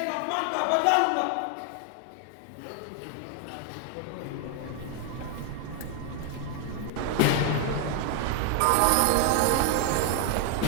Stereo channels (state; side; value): different; both; correlation 0.00